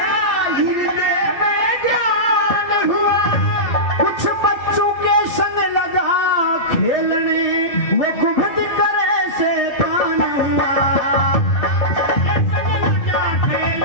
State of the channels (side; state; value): right; late; 2.6 ms